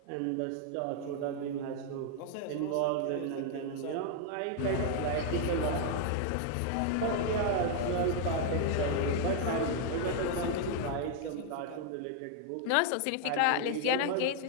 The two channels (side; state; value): both; different; correlation 0.00